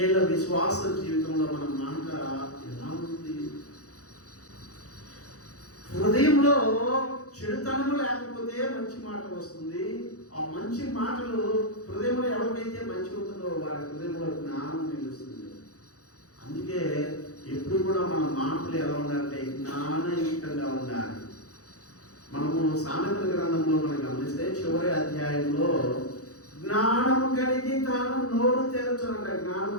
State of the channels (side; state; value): right; late; 0.66 ms